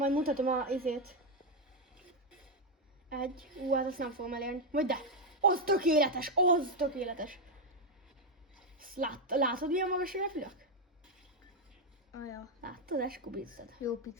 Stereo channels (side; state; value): both; normal; correlation 0.03